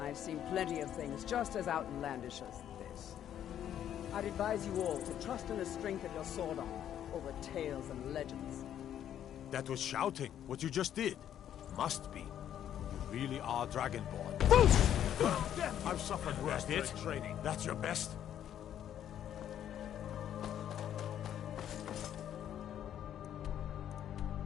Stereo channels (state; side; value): quieter; right; 10.4 dB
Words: I've seen plenty of things just as outlandish as this. I'd advise you all to trust in the strength of your sword arm over tales and legends. That was shouting, what you just did. Must be. You really are Dragonborn. I've suffered worse than training. That's your best?